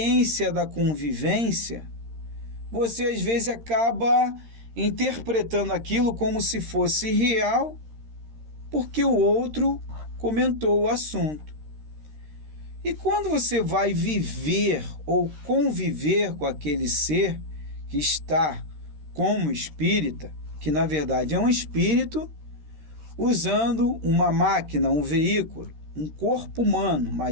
da convivência, você às vezes acaba interpretando aquilo como se fosse real, porque o outro comentou o assunto. E quando você vai viver ou conviver com aquele ser que está como espírita, que na verdade é um espírito, usando uma máquina, um veículo, um corpo humano,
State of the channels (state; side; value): late; left; 13 ms